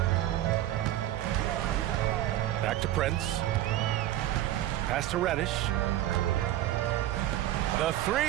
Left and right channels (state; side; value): quieter; left; 13.6 dB